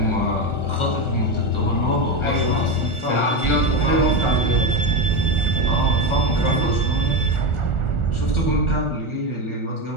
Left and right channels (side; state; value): right; late; 1.4 ms